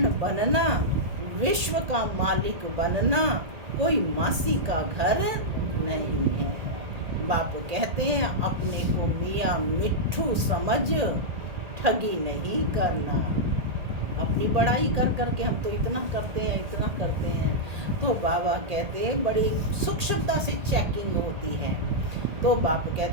बनना, विश्व का मालिक बनना कोई मासी का घर नहीं है। बाप कहते हैं अपने को मियाँ मिट्ठू समझ, ठगी नहीं करना। अपनी बड़ाई कर करके हम तो इतना करते हैं, इतना करते हैं। तो बाबा कहते हैं बड़ी सूक्ष्मता से चेकिंग होती है। तो बाप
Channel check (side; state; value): left; late; 1.8 ms